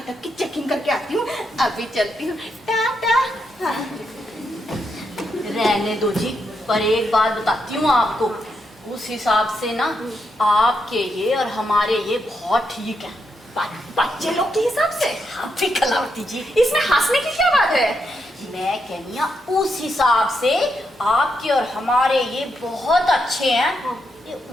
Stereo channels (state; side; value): normal; both; correlation 0.82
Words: की चेकिंग करके आती हूँ। अभी चलती हूँ, टाटा। रहने दो जी, पर एक बात बताती हूँ आपको, उस हिसाब से ना आपके ये और हमारे ये बहुत ठीक है। बच्चे लोग के हिसाब से? आप भी कलावती जी, इसमें हंसने की क्या बात है? मैं कहनी उस हिसाब से आपके और हमारे ये बहुत अच्छे हैं। ये